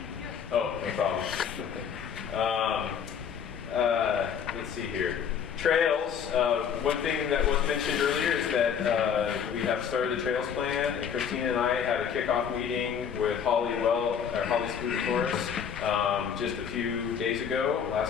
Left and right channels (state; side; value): quieter; right; 7.5 dB